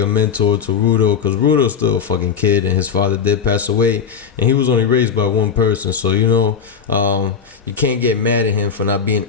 a mentor to Rudo because Rudo's still a fucking kid and his father did pass away and he was only raised by one person. So, you can't get mad at him for not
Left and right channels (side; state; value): right; quieter; 6.9 dB